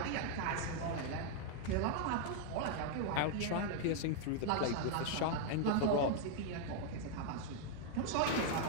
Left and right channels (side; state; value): both; different; correlation 0.00